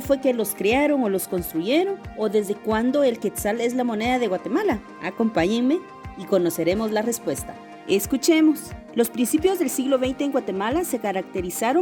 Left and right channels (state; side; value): identical; both; correlation 1.00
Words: que los crearon o los construyeron? ¿O desde cuándo el quetzal es la moneda de Guatemala? Acompáñenme y conoceremos la respuesta. Escuchemos. Los principios del siglo XX en Guatemala se